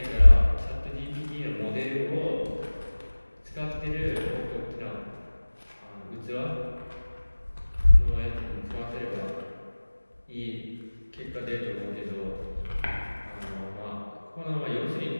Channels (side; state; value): both; inverted; correlation -1.00